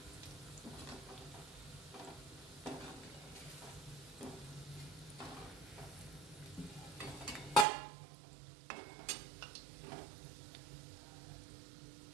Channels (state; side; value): drops out; left; at 7.7 s